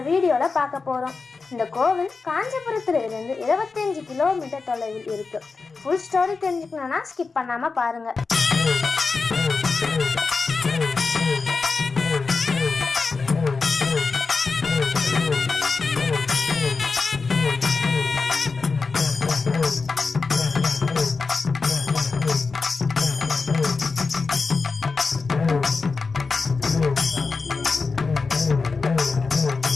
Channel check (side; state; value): right; quieter; 4.4 dB